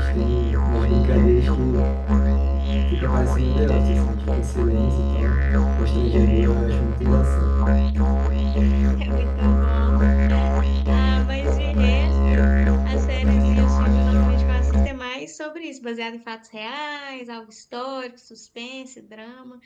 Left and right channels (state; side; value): identical; both; correlation 1.00